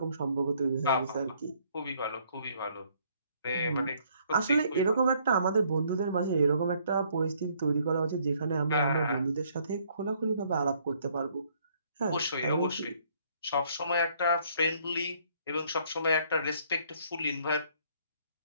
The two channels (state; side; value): inverted; both; correlation -0.65